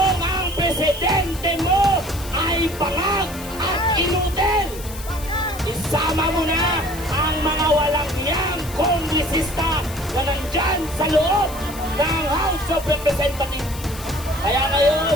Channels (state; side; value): noise; left; hiss, 14 dB below the sound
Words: ang presidente mo ay bangag at inutil. Isama mo na ang mga walang hiyang kongresista na nandyan sa loob ng House of Representatives. Kaya ngayon,